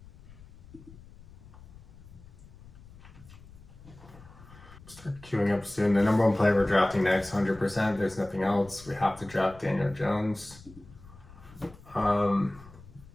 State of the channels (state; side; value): noise; left; rumble, 20 dB below the sound